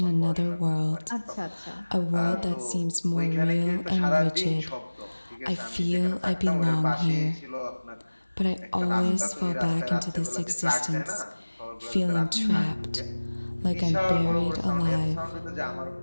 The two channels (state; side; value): inverted; both; correlation -1.00